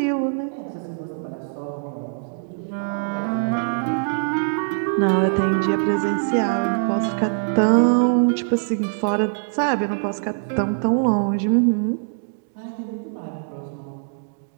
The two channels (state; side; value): silent; left; digital silence